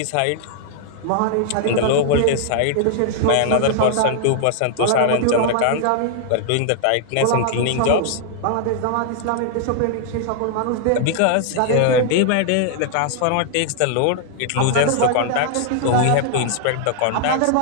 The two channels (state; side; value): different; both; correlation -0.01